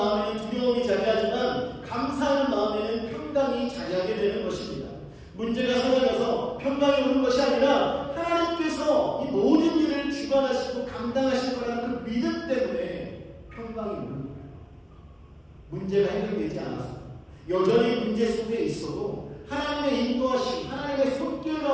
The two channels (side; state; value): both; identical; correlation 1.00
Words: 두려움이 자리하지만 감사하는 마음에는 평강이 자리하게 되는 것입니다. 문제가 사라져서 평강이 오는 것이 아니라 하나님께서 이 모든 일을 주관하시고 감당하실 거라는 그 믿음 때문에 평강이 오는 거예요. 문제가 해결되지 않았어요. 여전히 문제 속에 있어도 하나님의 인도하심, 하나님의 손길